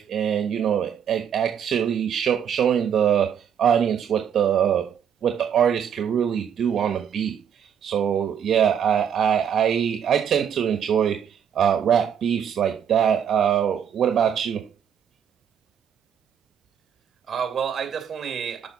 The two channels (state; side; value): quieter; left; 8.3 dB